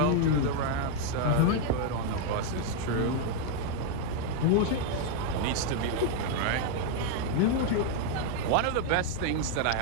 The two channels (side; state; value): both; different; correlation 0.01